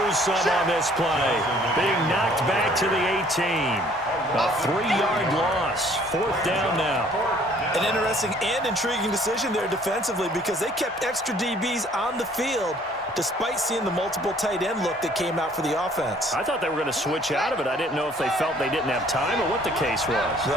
lose some on this play. Being knocked back to the 18. A 3-yard loss. 4th down now. An interesting and intriguing decision there defensively because they kept extra DBs on the field despite seeing the multiple tight end look that came out for the offense. I thought they were going to switch out of it. I didn't know if they felt they didn't have time or what the case was.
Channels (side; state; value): both; normal; correlation 0.58